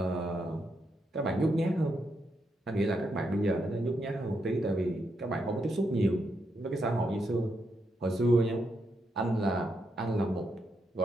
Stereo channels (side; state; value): both; normal; correlation 0.81